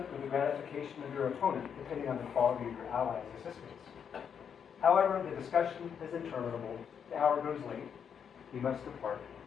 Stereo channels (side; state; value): right; quieter; 7.5 dB